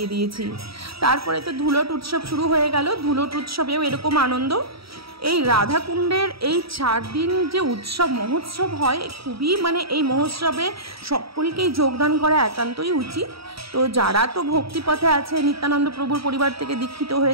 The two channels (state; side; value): late; left; 0.76 ms